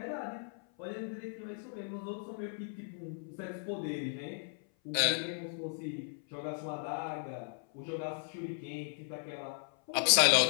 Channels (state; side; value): silent; right; 54 dB below the other